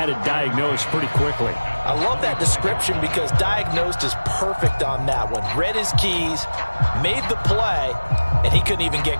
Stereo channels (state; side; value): inverted; both; correlation -1.00